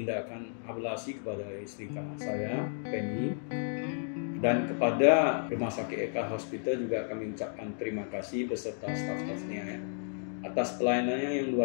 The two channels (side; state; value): right; silent; digital silence